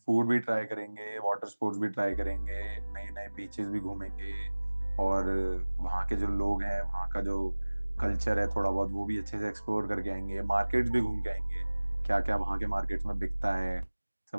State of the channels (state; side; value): inverted; both; correlation -1.00